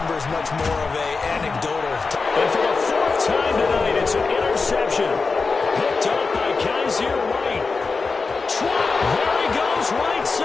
is much more of a anecdotal. And for the fourth time tonight, it's an interception. Picked up by Kaiser White. There he goes, right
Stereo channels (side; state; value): right; quieter; 4.4 dB